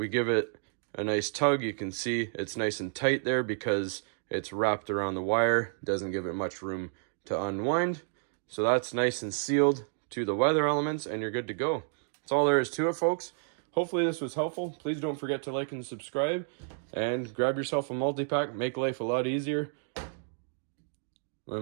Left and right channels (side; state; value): left; silent; digital silence